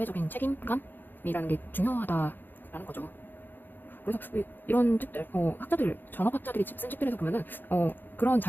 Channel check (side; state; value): right; late; 0.092 ms